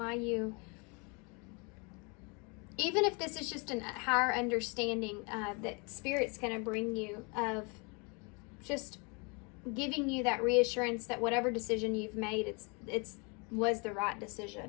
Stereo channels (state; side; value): quieter; right; 31.9 dB